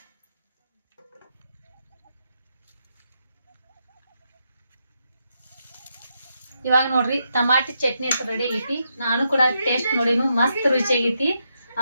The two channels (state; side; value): inverted; both; correlation -0.82